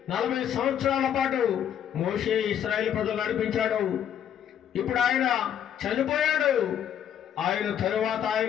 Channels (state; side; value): quieter; right; 9.5 dB